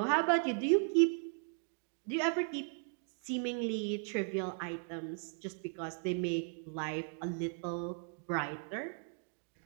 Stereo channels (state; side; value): silent; left; 53 dB below the other